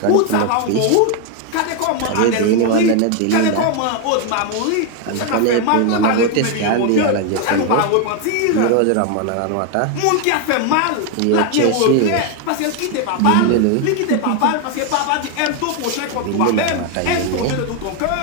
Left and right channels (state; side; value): different; both; correlation 0.01